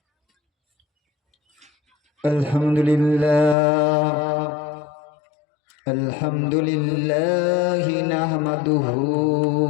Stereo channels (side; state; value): right; drops out; at 3.6 s